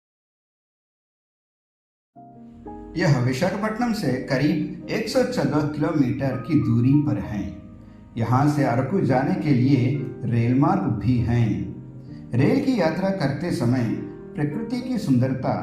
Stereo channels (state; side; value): identical; both; correlation 1.00